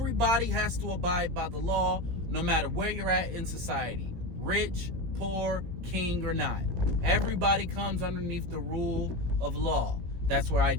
has to abide by the law, no matter where you're at in society. Rich, poor, king, or not. Everybody comes underneath the rule of law. That's where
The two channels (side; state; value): left; late; 17 ms